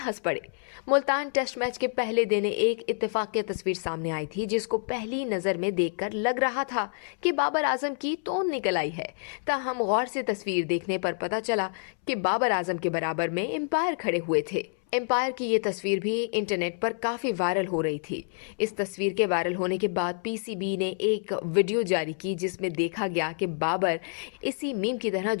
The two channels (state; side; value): silent; right; 59 dB below the other